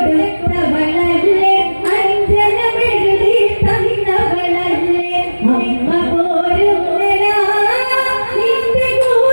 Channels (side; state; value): both; inverted; correlation -1.00